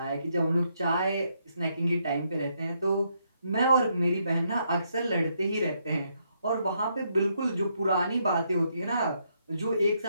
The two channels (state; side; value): inverted; both; correlation -0.76